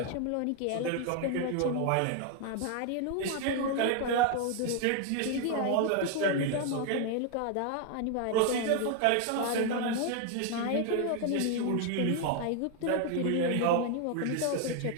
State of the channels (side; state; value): both; different; correlation 0.00